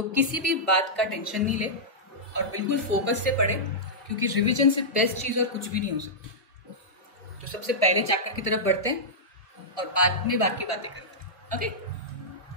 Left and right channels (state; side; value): normal; both; correlation -0.12